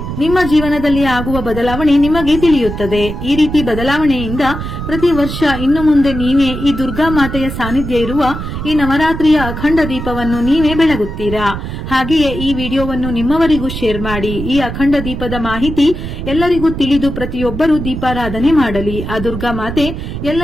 ನಿಮ್ಮ ಜೀವನದಲ್ಲಿ ಆಗುವ ಬದಲಾವಣೆ ನಿಮಗೆ ತಿಳಿಯುತ್ತದೆ. ಈ ರೀತಿ ಬದಲಾವಣೆಯಿಂದ ಪ್ರತಿ ವರ್ಷ ಇನ್ನು ಮುಂದೆ ನೀವೇ ಈ ದುರ್ಗಾ ಮಾತೆಯ ಸಾನ್ನಿಧ್ಯ ಇರುವ ಈ ನವರಾತ್ರಿಯ ಅಖಂಡ ದೀಪವನ್ನು ನೀವೇ ಬೆಳಗುತ್ತೀರಾ. ಹಾಗೆಯೇ ಈ ವಿಡಿಯೋವನ್ನು ನಿಮ್ಮವರಿಗೂ ಶೇರ್ ಮಾಡಿ. ಈ ಅಖಂಡ ದೀಪದ ಮಾಹಿತಿ ಎಲ್ಲರಿಗೂ ತಿಳಿದು ಪ್ರತಿಯೊಬ್ಬರೂ ದೀಪಾರಾಧನೆ ಮಾಡಲಿ. ಆ ದುರ್ಗಾ ಮಾತೆ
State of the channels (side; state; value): right; noise; rumble, 7 dB below the sound